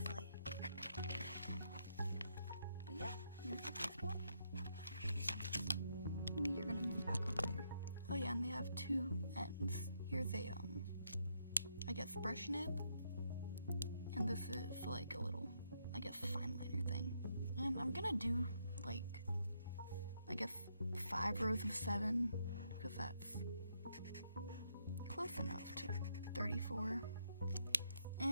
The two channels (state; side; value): inverted; both; correlation -0.77